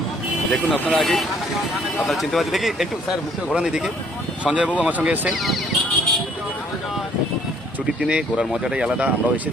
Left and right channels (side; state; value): both; normal; correlation 0.61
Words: দেখুন আপনারা আগে আপনারা চিনতে পারছেন, দেখি একটু স্যার মুখে ঘোরান এদিকে। সঞ্জয়বাবু আমার সঙ্গে এসেছেন। ছুটির দিনে ঘোরার মজাটাই আলাদা। আমরাও